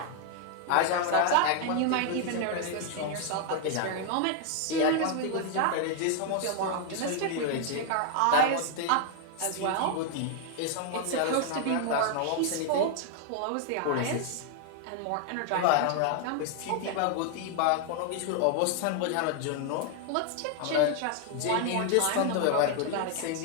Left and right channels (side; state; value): both; different; correlation 0.00